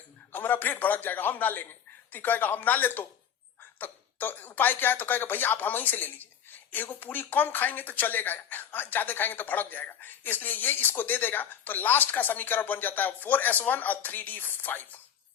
हमारा पेट भड़क जाएगा, हम ना लेंगे। तो कहेगा हम ना ले तो उपाय क्या है, तो कहेगा भैया आप हम ही से ले लीजिए, एगो पूरी कम खाएंगे तो चलेगा, ज्यादा खाएंगे तो भड़क जाएगा, इसलिए ये इसको दे देगा। तो लास्ट का समीकरण बन जाता है 4s1 और 3d5,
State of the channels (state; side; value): quieter; right; 8.8 dB